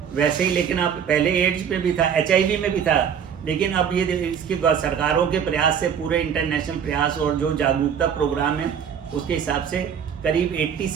वैसे ही लेकिन अब पहले एड्स में भी था, HIV में भी था, लेकिन अब ये इसकी सरकारों के प्रयास से, पूरे इंटरनेशनल प्रयास और जो जागरूकता प्रोग्राम है, उसके हिसाब से करीब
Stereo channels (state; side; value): quieter; left; 7.9 dB